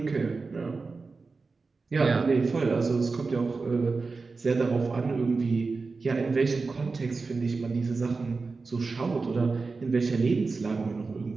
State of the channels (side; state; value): left; quieter; 4.2 dB